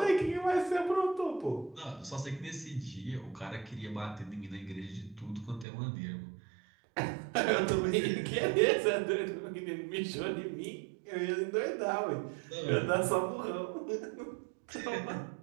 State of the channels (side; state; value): left; drops out; at 5.7 s